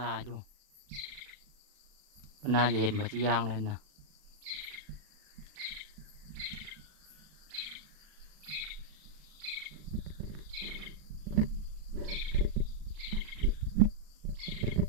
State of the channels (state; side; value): late; left; 39 ms